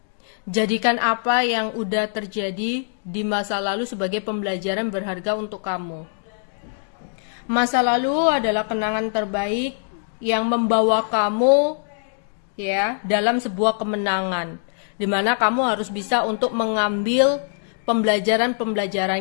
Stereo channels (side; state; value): right; silent; digital silence